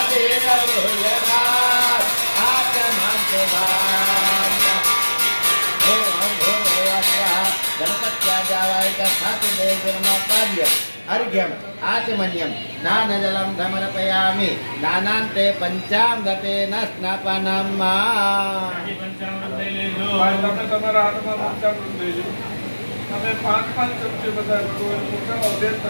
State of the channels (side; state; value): both; inverted; correlation -1.00